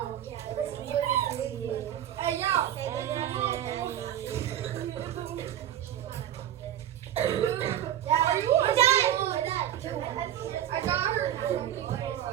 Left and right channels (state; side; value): quieter; left; 11.2 dB